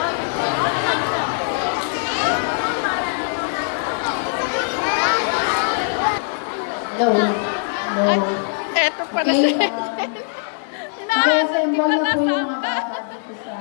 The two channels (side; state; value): right; silent; digital silence